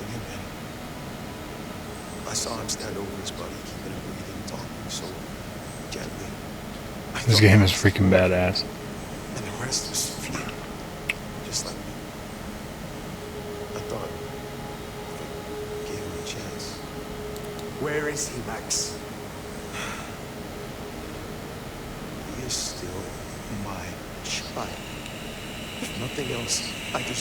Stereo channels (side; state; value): both; identical; correlation 1.00